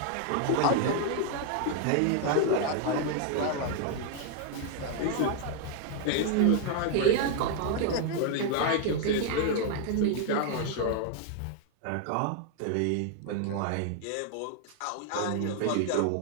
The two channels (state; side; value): different; both; correlation 0.00